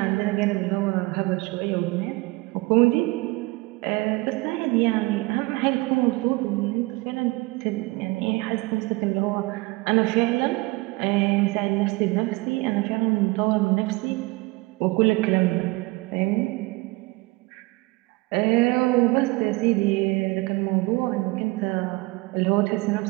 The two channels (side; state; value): left; quieter; 23.4 dB